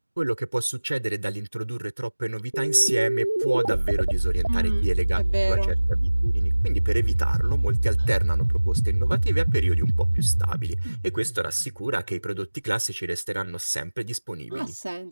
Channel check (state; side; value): inverted; both; correlation -1.00